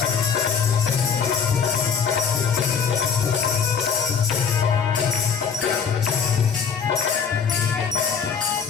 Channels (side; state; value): right; quieter; 6.7 dB